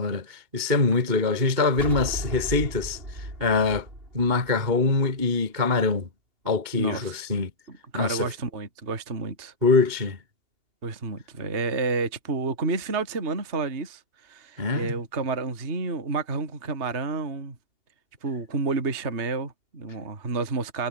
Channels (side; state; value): left; late; 2.8 ms